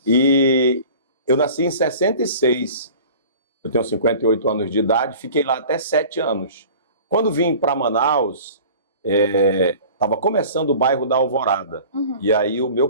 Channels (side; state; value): both; inverted; correlation -0.43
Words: E eu nasci em 66, eu tenho 58 anos de idade, fiquei lá até 7 anos. Quando vim para Manaus, estava começando o bairro da Alvorada. E aí o meu